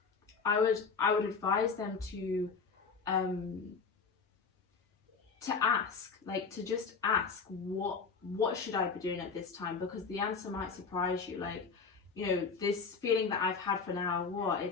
I would advise them to ask, like to just ask, what should I be doing at this time? Because the answer might surprise you. Like, this feeling that I've had for now,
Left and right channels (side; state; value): right; quieter; 5.2 dB